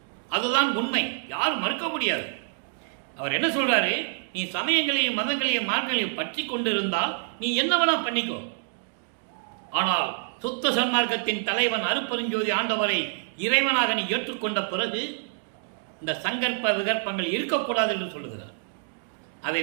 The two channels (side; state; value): left; silent; digital silence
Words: அதுதான் உண்மை, யாரும் மறுக்க முடியாது. அவர் என்ன சொல்றாரு, நீ சமயங்களையும் மதங்களையும் மார்க்கங்களையும் பற்றி கொண்டிருந்தால் நீ என்ன வேணா பண்ணிக்கோ. ஆனால் சுத்த சன்மார்க்கத்தின் தலைவன் அருப்பெருஞ்சோதி ஆண்டவரை இறைவனாக நீ ஏற்றுக்கொண்ட பிறகு இந்த சங்கற்ப விகற்பங்கள் இருக்கக்கூடாது என்று சொல்லுகிறார். அதை